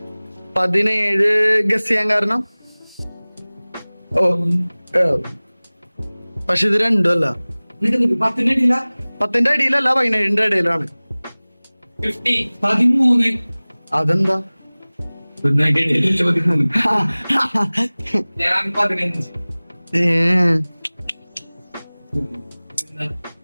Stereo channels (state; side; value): inverted; both; correlation -1.00